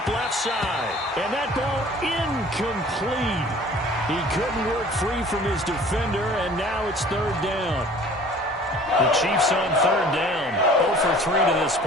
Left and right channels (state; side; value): normal; both; correlation 0.49